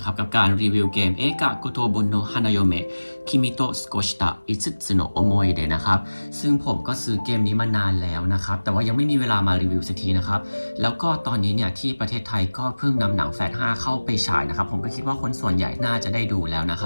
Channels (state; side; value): inverted; both; correlation -1.00